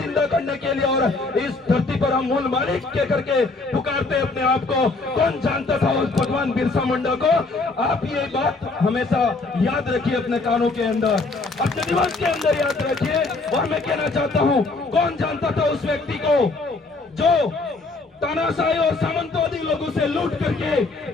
करने के लिए और इस धरती पर हम मूल मालिक के करके पुकारते अपने आप को। कौन जानता था उस भगवान बिरसा मुंडा को? आप ये बात हमेशा याद रखिए अपने कानों के अंदर, अपने दिमाग के अंदर याद रखिए। और मैं कहना चाहता हूँ, कौन जानता था उस व्यक्ति को जो तानाशाही और सामंतवादी लोगों से लूट करके,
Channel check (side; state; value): right; quieter; 3.5 dB